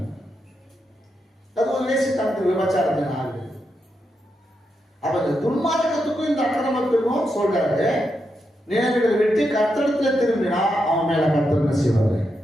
அது ஒரு வேசித்தனத்துக்கு விபச்சாரத்தின் ஆவி. அப்ப இந்த துன்மார்க்கத்துக்கும் இந்த அக்கிரமத்துக்கும் சொல்றாரு, நினைவுகளை வெட்டி கர்த்தரிடத்துல திரும்பினா அவன் மேல கர்த்தர் என்ன செய்வாரு,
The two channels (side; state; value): both; normal; correlation 0.84